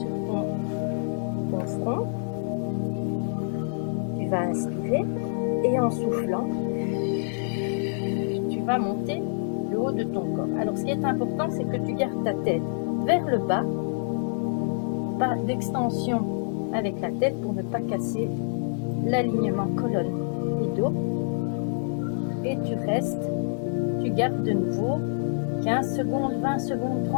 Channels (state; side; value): silent; right; digital silence